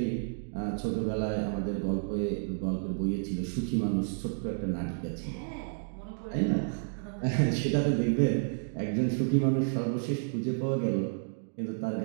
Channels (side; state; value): left; silent; digital silence